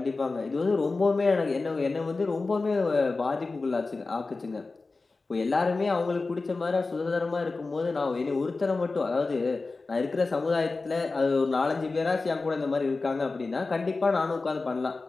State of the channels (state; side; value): quieter; right; 3.7 dB